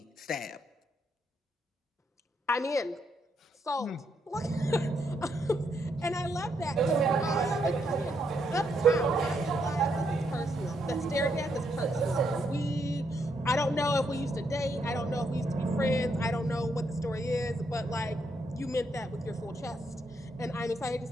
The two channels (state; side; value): normal; both; correlation 0.77